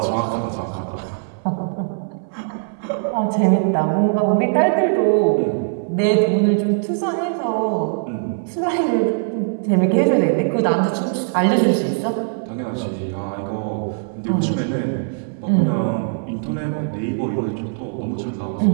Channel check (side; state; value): left; silent; 64 dB below the other